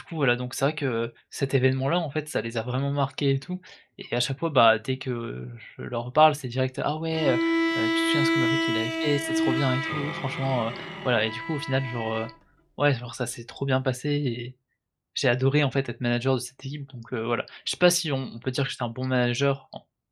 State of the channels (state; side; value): identical; both; correlation 1.00